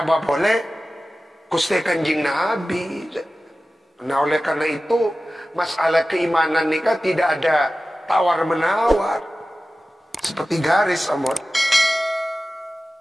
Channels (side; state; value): both; normal; correlation 0.95